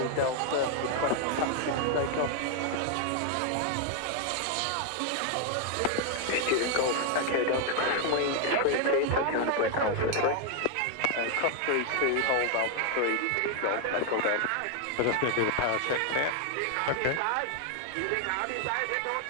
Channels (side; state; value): both; different; correlation 0.00